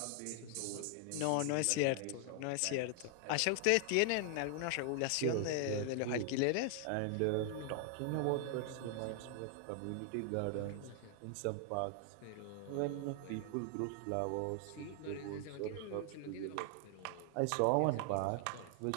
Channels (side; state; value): both; different; correlation 0.00